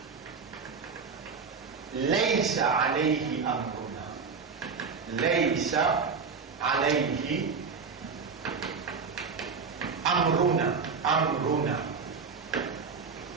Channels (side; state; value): left; quieter; 5.3 dB